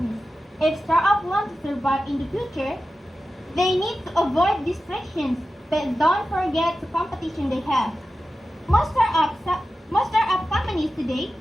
If startups want to survive in the future, they need to avoid distractions, but don't forget the competition they have. Most startup companies today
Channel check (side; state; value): both; normal; correlation 0.93